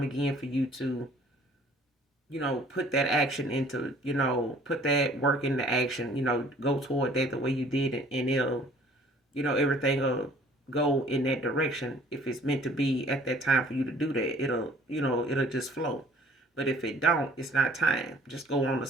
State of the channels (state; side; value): normal; both; correlation 0.54